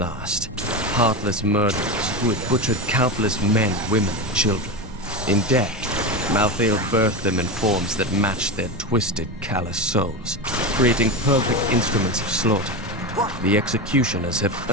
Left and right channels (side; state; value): both; normal; correlation 0.19